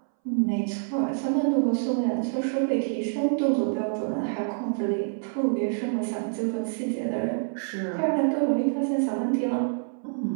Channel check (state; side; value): silent; left; 60 dB below the other